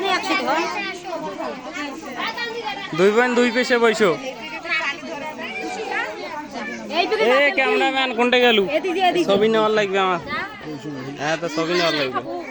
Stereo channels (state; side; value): identical; both; correlation 1.00